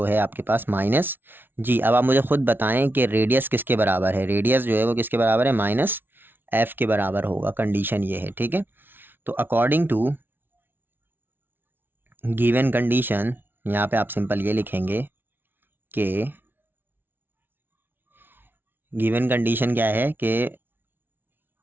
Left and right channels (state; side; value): late; left; 0.10 ms